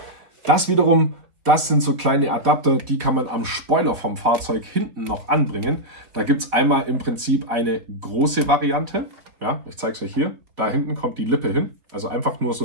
das wiederum, das sind so kleine Adapter, die kann man am Spoiler vom Fahrzeug hinten noch anbringen. Da gibt es einmal im Prinzip eine große Variante. Ja, ich zeige es euch hier. Da hinten kommt die Lippe hin. Also einfach nur so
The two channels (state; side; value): late; left; 4.0 ms